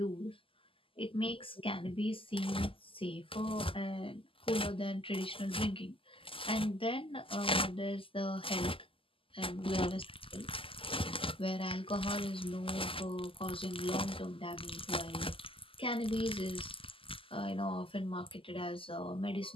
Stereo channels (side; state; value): right; late; 0.26 ms